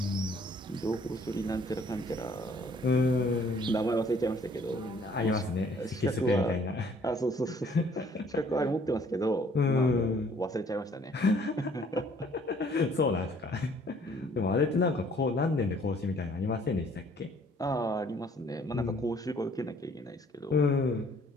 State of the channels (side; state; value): both; normal; correlation 0.59